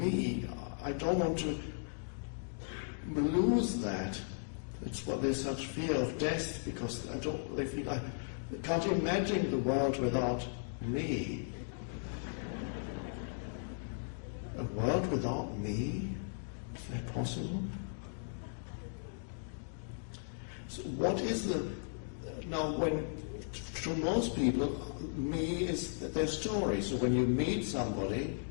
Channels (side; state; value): right; silent; digital silence